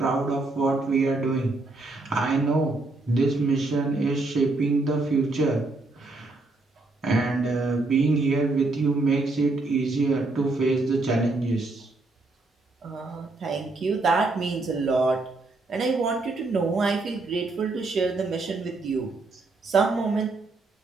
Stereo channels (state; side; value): quieter; left; 3.3 dB